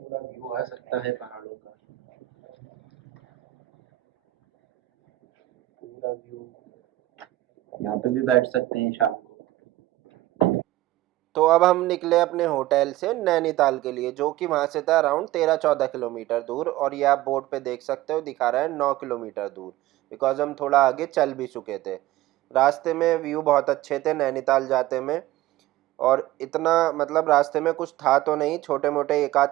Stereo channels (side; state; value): left; quieter; 16.3 dB